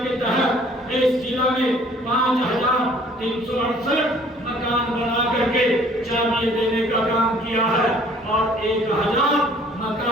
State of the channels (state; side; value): normal; both; correlation 0.56